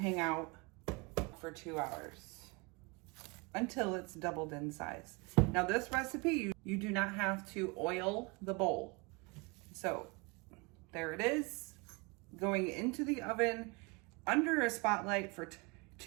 out for 2 hours until it's doubled in size. Now this recipe, you do not have to oil the bowl. So there it is, going into the oven under a spotlight for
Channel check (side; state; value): left; quieter; 28.1 dB